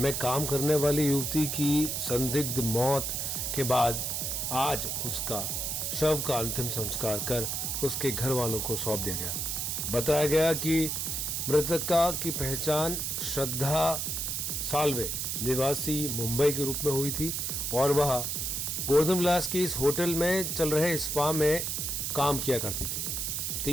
काम करने वाली युवती की संदिग्ध मौत के बाद आज उसका शव का अंतिम संस्कार कर उसके घर वालों को सौंप दिया गया। बताया गया कि मृतका की पहचान श्रद्धा साल्वे निवासी मुंबई के रूप में हुई थी और वह गोवर्धन विलास के इस होटल में चल रहे स्पा में काम किया करती थी।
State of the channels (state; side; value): noise; right; hiss, 1 dB below the sound